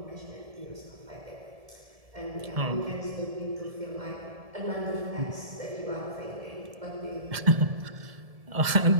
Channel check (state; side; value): late; left; 1.7 ms